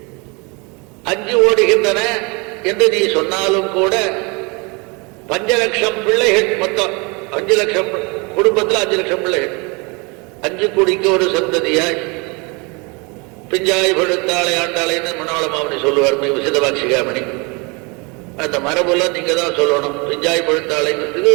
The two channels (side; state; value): left; quieter; 29.7 dB